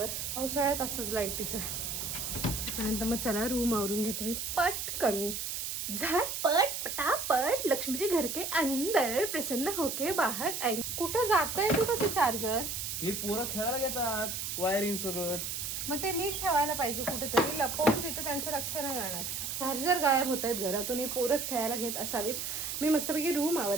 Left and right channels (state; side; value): noise; right; hiss, 4 dB below the sound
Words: पावसाळ्यात असंच लाईटीचं. त्यानंतर मग चला रूम आवरून घेते मी पटकन. झटपट पटापट, लक्ष्मीचे घर के अंदर, प्रसन्न होके बाहेर आए. कुठं जातंय कुठं ते चार्जर? हे पोरं खेळायला घेतात वायरिंग सगळं. मग ते नीट ठेवायला पाहिजे कुठेतरी, लपवून तिथं त्यांचं लक्ष नाही जाणार. चार्जर गायब होत आहेत घरातून, हे पोरच खेळायला घेत असावीत. मी मस्तपैकी रूम